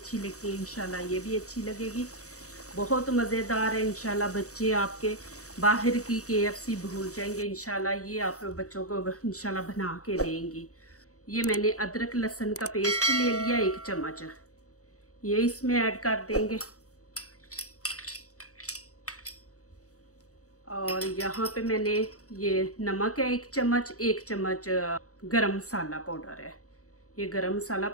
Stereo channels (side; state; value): right; late; 0.65 ms